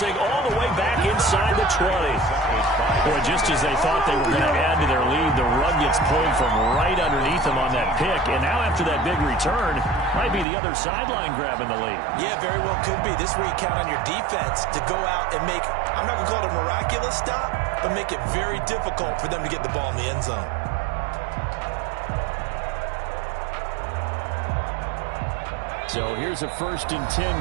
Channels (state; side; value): drops out; left; at 10.5 s